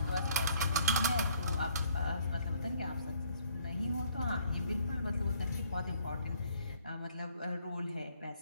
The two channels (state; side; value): inverted; both; correlation -0.63